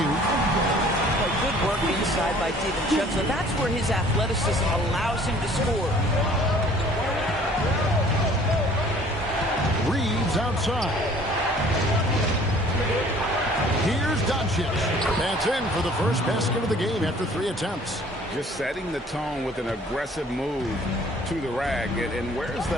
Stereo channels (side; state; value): both; normal; correlation 0.53